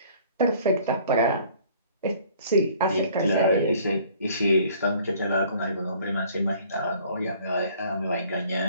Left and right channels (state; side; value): inverted; both; correlation -0.55